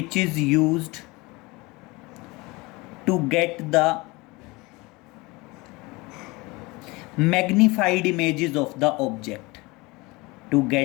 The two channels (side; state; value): right; quieter; 24.0 dB